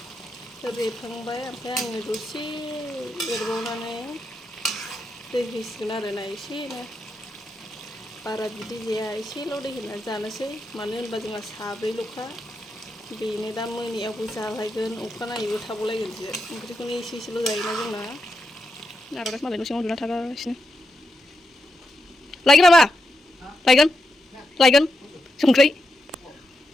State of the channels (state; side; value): normal; both; correlation 0.85